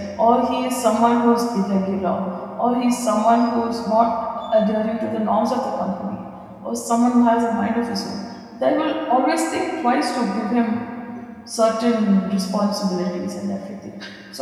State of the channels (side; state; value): both; identical; correlation 1.00